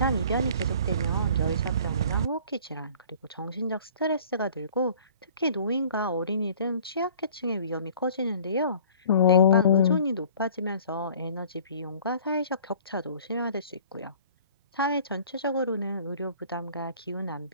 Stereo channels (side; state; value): both; inverted; correlation -0.49